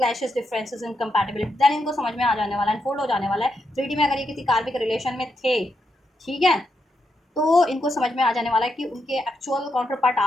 differences, incompatibility, then इनको समझ में आ जाने वाला है, अनफोल्ड हो जाने वाला है 3D में। अगर ये किसी कार्मिक रिलेशन में थे, ठीक है, तो इनको समझ में आ जाने वाला है कि उनके एक्चुअल काउंटर पार्ट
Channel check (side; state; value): both; normal; correlation 0.83